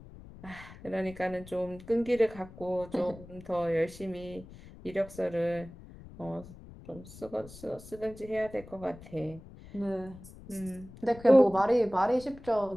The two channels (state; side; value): noise; left; rumble, 17 dB below the sound